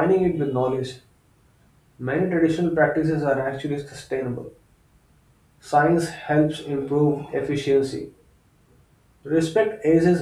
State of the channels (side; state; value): both; identical; correlation 1.00